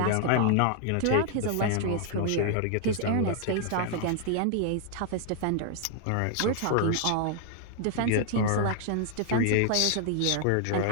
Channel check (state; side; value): different; both; correlation 0.00